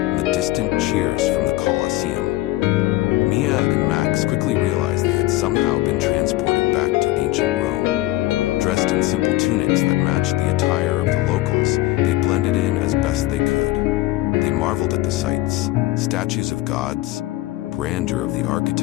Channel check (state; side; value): quieter; right; 17.3 dB